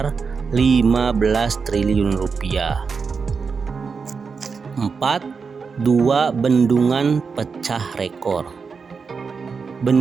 15 triliun rupiah. 4. 2 bendungan pecah rekor.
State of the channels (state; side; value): quieter; left; 5.3 dB